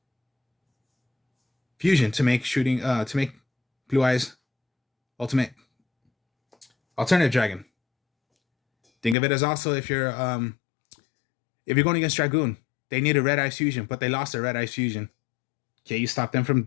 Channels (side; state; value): right; drops out; at 9.2 s